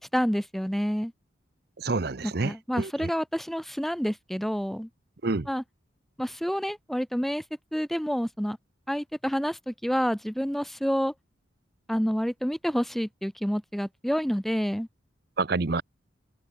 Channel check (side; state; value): both; normal; correlation 0.88